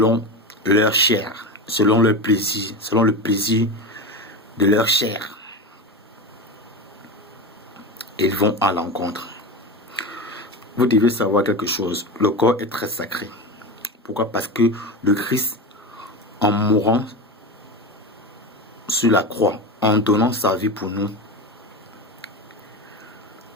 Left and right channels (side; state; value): both; normal; correlation 0.24